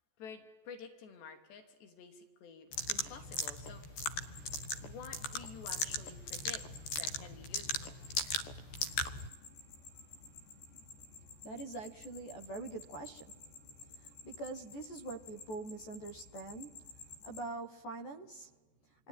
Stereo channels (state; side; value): late; right; 14 ms